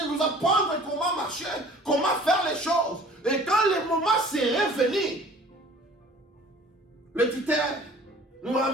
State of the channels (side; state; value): both; normal; correlation 0.49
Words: nous apprendre comment marcher, comment faire les choses. Et quand le moment serait venu, le tuteur nous